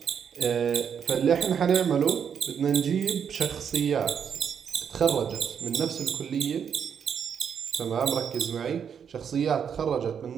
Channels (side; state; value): left; quieter; 7.6 dB